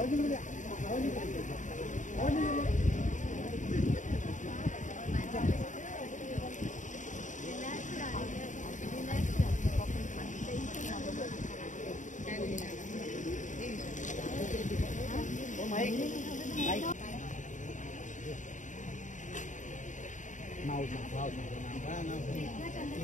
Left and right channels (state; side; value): late; right; 0.36 ms